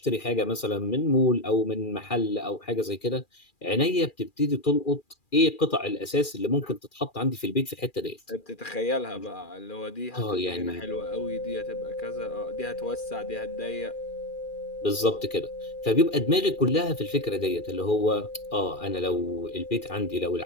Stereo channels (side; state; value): right; late; 2.4 ms